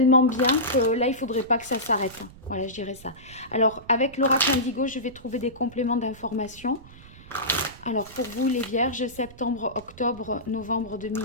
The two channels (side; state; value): right; noise; rumble, 20 dB below the sound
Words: bien que là, il ne faudrait pas que ça s'arrête. Voilà, je dirais ça. Alors, avec l'oracle indigo, je vais trouver des compléments d'information. Alors, pour vous, les Vierges, septembre, octobre, novembre